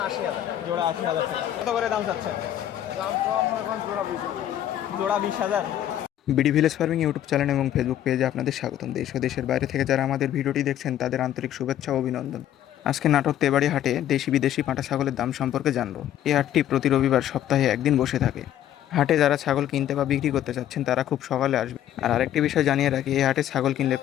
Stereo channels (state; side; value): quieter; right; 11.5 dB